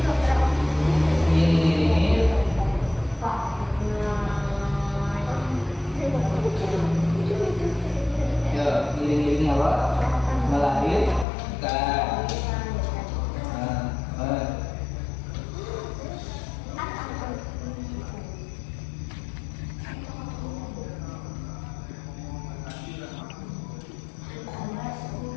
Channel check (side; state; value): right; drops out; at 11.2 s